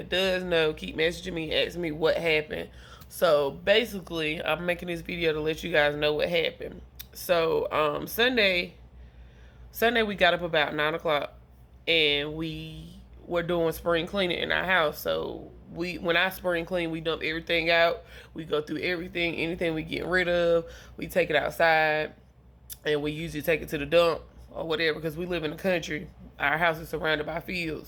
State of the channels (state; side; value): identical; both; correlation 1.00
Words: does know keep messaging me, asking me what happened. So basically, I'm making this video to let you guys know what happened. So Sunday we got up about 9 o'clock and we were doing spring cleaning in our house. So when I spring clean, we dump everything out. We go through everything, anything we get rid of, we take it outside, and we usually take it to the dump or whatever because we live in the country. Our house is surrounded by